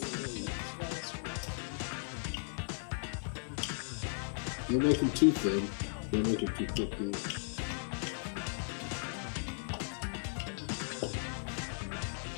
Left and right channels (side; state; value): right; silent; 53 dB below the other